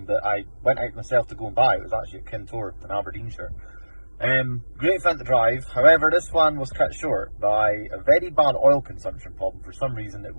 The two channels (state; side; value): inverted; both; correlation -1.00